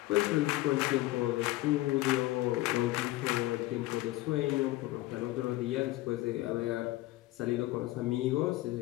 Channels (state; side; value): quieter; right; 18.1 dB